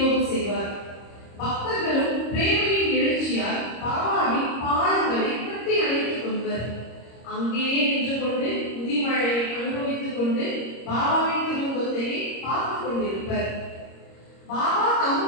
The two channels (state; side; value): late; right; 26 ms